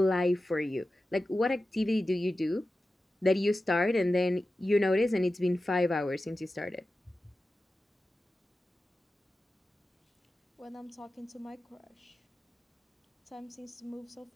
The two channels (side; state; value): both; normal; correlation 0.93